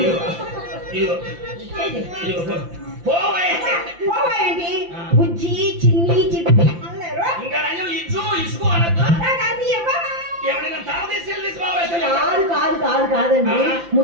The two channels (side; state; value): left; late; 5.8 ms